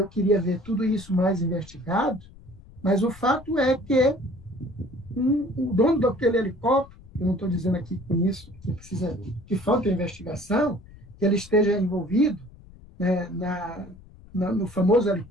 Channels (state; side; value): noise; left; rumble, 21 dB below the sound